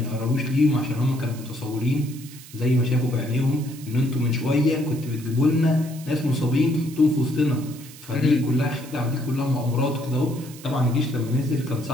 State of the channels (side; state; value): right; noise; hiss, 18 dB below the sound